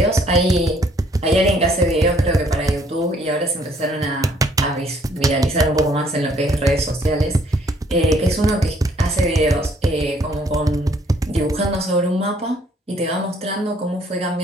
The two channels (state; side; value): normal; both; correlation 0.64